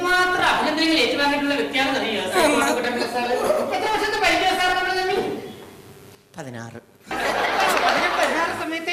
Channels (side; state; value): both; identical; correlation 1.00